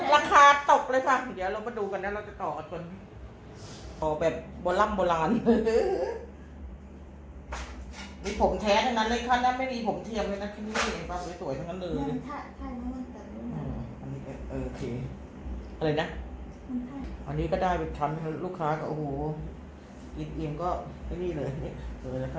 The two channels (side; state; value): both; identical; correlation 1.00